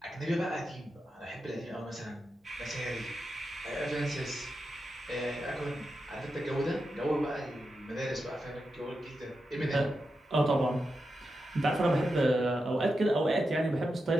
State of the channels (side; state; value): both; normal; correlation 0.88